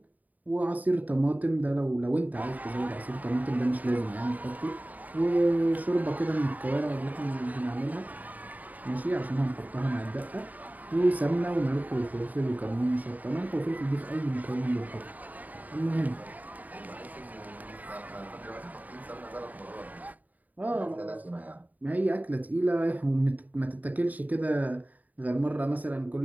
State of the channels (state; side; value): late; left; 0.078 ms